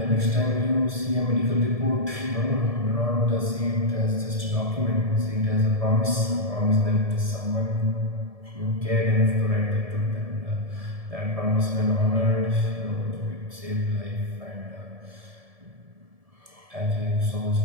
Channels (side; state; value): left; late; 1.7 ms